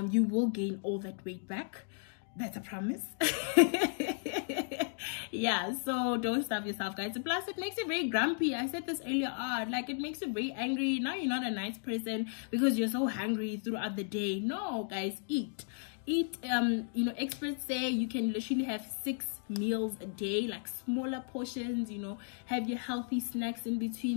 You will gain all that weight back. That's a promise. Yeah, so don't starve yourself, guys. Plus, it makes you very grumpy. I said this earlier on. Like, it makes you very angry. Now you're not a nice person because you're so hungry throughout the day. No, guys, eat. Eat. You know, experts say you can literally have 6 meals a day, like smaller portions, you know, have your healthy snacks in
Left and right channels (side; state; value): right; silent; 55 dB below the other